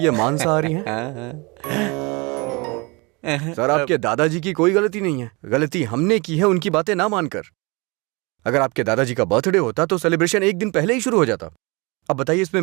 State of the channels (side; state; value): left; quieter; 27.3 dB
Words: मांसाहारी हैं। सर, आपके दादाजी की कोई गलती नहीं है, गलती हमने की है उनकी बातें ना मानकर। अगर आपके दादाजी का बर्थडे होता तो सेलिब्रेशन एक दिन पहले ही शुरू हो जाता। अब बताइए इसमें